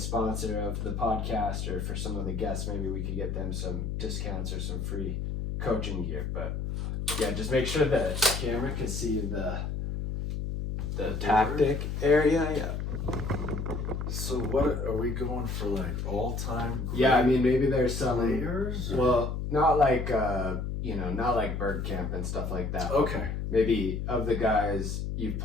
of the podcast, or for some of the guests, maybe we could get them some discounts or some free coaching gear. But yeah, just make sure the camera can see the tactic area. Yeah. So what are we going for, like all-time great Yeah, I mean, maybe there's some players? Or? Well, not like not like bird camp and stuff like that. Okay. Maybe of the guys you've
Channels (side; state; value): left; noise; hum, 3 dB below the sound